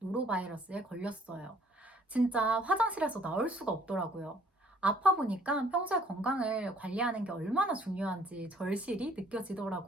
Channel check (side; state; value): both; normal; correlation 0.60